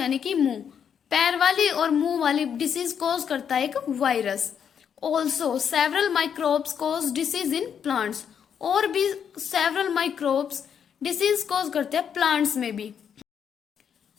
कि मुंह। पैर वाली और मुंह वाली डिसीज कॉज करता है एक virus. Also several microbes cause disease in plants. और भी सेवरल माइक्रोब्स डिसीज कॉज करते हैं प्लांट्स में भी।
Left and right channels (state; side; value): quieter; right; 7.9 dB